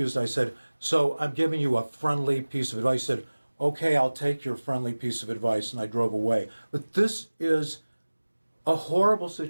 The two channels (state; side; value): inverted; both; correlation -1.00